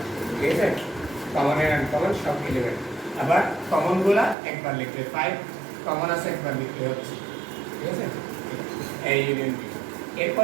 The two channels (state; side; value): drops out; left; at 4.4 s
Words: ঠিক আছে? কমন এন্ড আনকমন সব এলিমেন্ট। আবার কমন গুলা একবার লিখলে 5 কমন আছে একবার লিখলে হচ্ছে, ঠিক আছে? a union b।